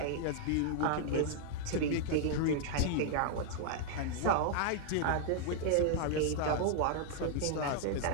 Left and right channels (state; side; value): different; both; correlation 0.00